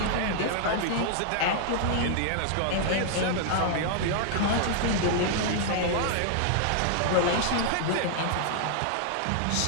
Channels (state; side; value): different; both; correlation -0.01